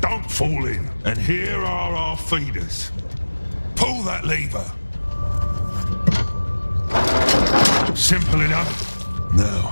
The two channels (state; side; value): inverted; both; correlation -1.00